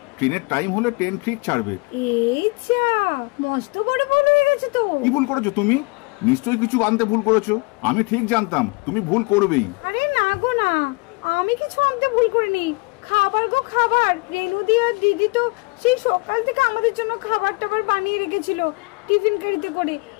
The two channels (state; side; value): quieter; right; 28.9 dB